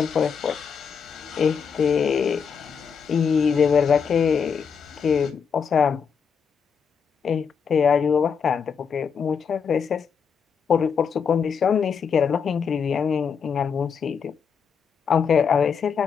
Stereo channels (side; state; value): right; quieter; 6.5 dB